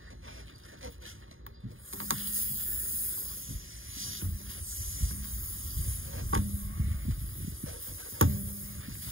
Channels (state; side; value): late; left; 0.59 ms